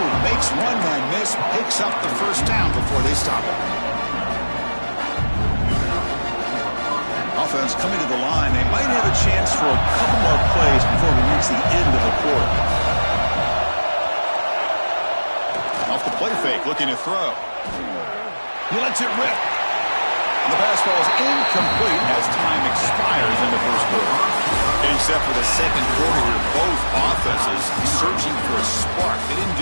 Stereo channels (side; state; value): both; inverted; correlation -1.00